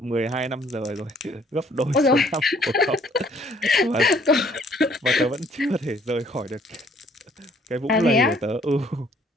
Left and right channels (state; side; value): normal; both; correlation 0.62